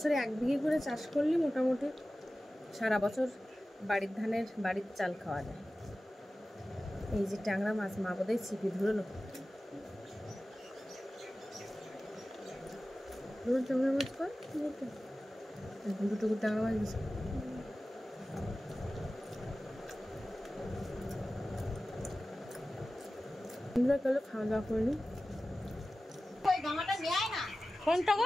1 বিঘে করে চাষ করলে মোটামুটি সারা বছর বাড়ির ধানের বাড়ির চাল খাওয়া যায়। এই যে ট্যাংরা মাছ, মা বোধহয় ছিপি ধরলো। ট্যাংরা মাছ কর, দুটো ট্যাংরা মাছ দিচ্ছে। খাওয়া দাওয়া করিনি। কোনটা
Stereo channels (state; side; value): normal; both; correlation 0.95